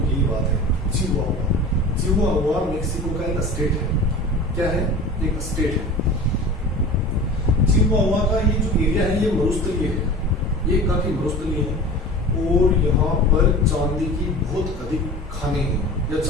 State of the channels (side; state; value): both; normal; correlation 0.37